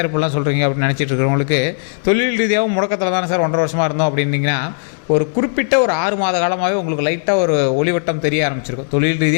இப்படிலாம் சொல்கிறீங்க அப்படின்னு நினச்சிட்டு இருக்கிறவங்களுக்கு, தொழில் ரீதியாகவும் முடக்கத்தில் தானே சார் 1.5 வருஷமாக இருந்தோம் அப்படின்னீங்கன்னா, ஒரு குறிப்பிட்ட ஒரு 6 மாத காலமாகவே உங்களுக்கு லைட்டாக ஒரு ஒளிவட்டம் தெரிய ஆரம்பிச்சிருக்கும். தொழில்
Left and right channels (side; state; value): right; silent; 60 dB below the other